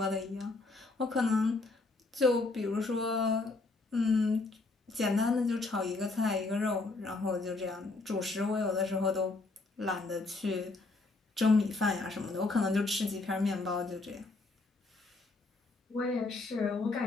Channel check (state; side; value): quieter; right; 3.4 dB